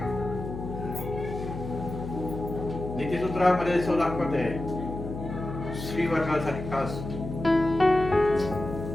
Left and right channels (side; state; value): left; noise; hum, 8 dB below the sound